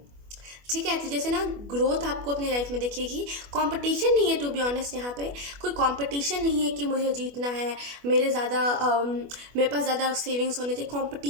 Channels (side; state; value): left; late; 25 ms